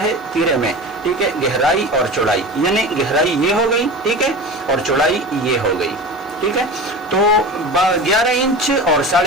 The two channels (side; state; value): both; normal; correlation 0.31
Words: तीरे में, ठीक है, गहराई और चौड़ाई, यानी गहराई ये हो गई, ठीक है, और चौड़ाई ये हो गई, ठीक है। तो 11 इंच और